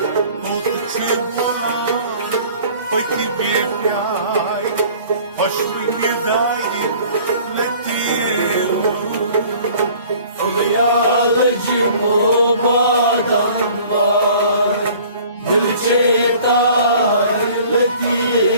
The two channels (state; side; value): inverted; both; correlation -0.50